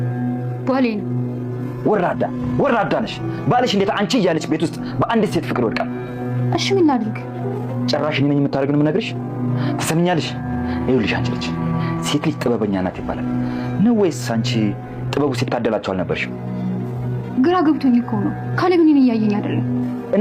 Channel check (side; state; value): both; identical; correlation 1.00